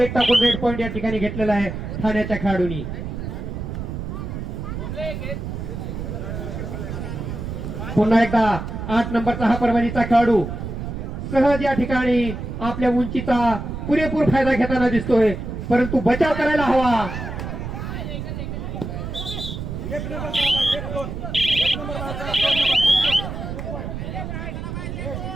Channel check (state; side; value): noise; right; rumble, 6 dB below the sound